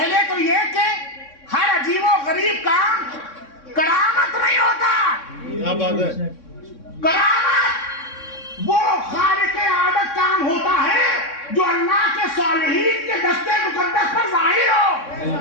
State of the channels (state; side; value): late; right; 3.6 ms